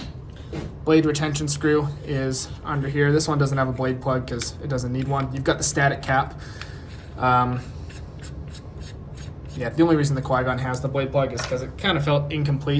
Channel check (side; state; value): both; identical; correlation 1.00